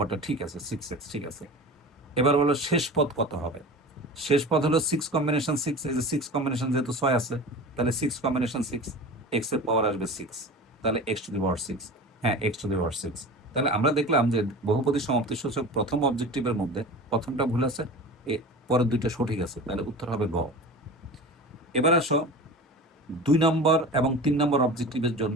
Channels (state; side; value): normal; both; correlation 0.34